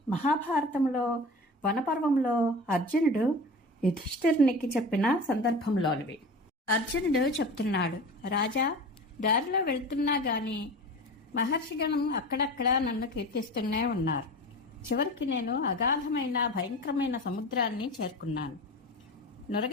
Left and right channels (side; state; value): both; normal; correlation 0.33